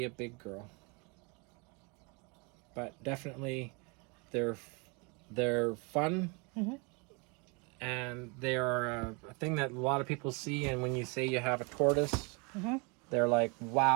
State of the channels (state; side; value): quieter; left; 31.3 dB